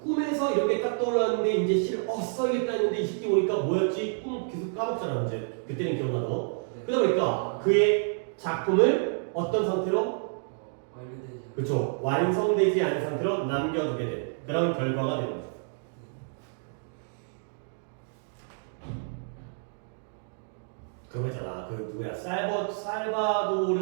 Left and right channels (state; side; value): silent; left; digital silence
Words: 꿈에서 이렇게 딱 떠올랐는데 이제 써야겠다 했는데 이 새끼 오니까 뭐였지? 꿈 계속 까먹잖아 이제. 그때는 기억나도. 네. 그러다 보니까 그의 작품을 어떤 상태로? 완료되지 않은. 그렇죠. 완성되지 않은 상태로 남겨두게 된 그런 결과가 되는 거죠. 그거잖아. 그 누구야?